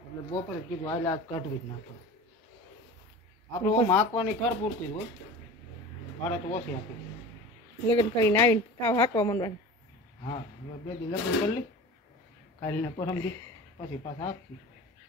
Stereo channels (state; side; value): normal; both; correlation 0.36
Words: એટલે બપોરે કીધું હાલ આજ કાઢવી જ ના પડે આપણે આમ હાંકવાની ખર પૂરતી જ હોય ભાડે તો ઓછી આપી લગ્ન કરીને આવીને તાવ હાંકવા માંડવાનું હા હવે 2 દી લગ્ન કરી લી કાલને પરમ દી પછી પાછા હાંકશું